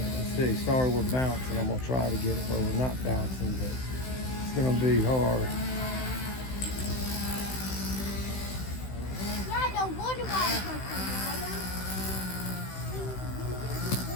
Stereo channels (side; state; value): right; late; 16 ms